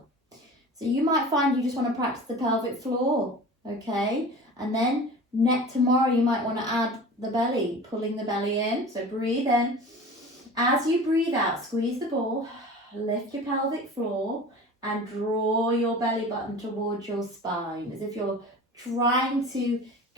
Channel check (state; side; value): normal; both; correlation 0.38